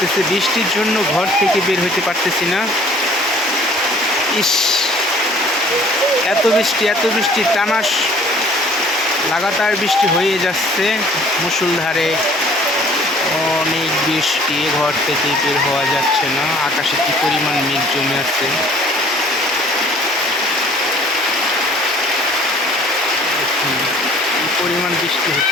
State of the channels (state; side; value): normal; both; correlation 0.54